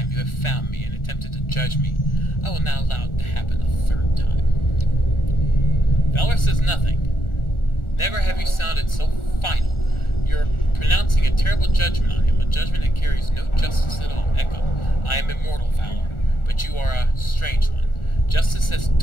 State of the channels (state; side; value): late; right; 1.4 ms